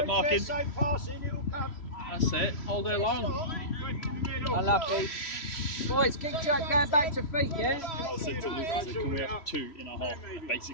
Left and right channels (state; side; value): late; right; 3.0 ms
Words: marking. Same passing, it'll come. That's it, all day long. Unlucky. Boys, keep going back to feet, yeah? I said to Luke, can we have 2 in a half,